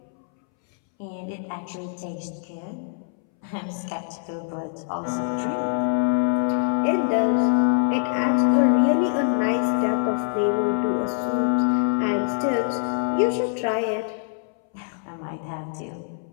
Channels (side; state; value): right; silent; 62 dB below the other